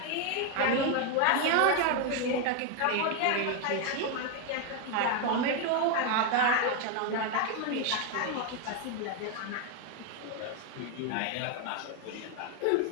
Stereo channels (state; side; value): different; both; correlation 0.01